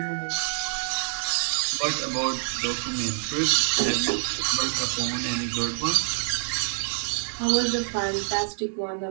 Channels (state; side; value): silent; left; digital silence